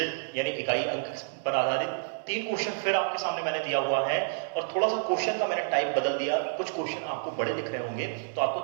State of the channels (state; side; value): silent; left; digital silence